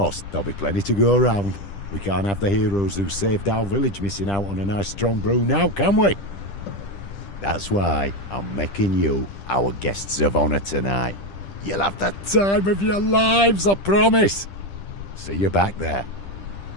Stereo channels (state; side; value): late; right; 10 ms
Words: there'll be plenty to go around. We can't have the heroes who saved our village missing out on a nice strong brew now, can we? That's why I'm making you our guests of honour tonight. You'll have the time of your lives, I promise. See you back there.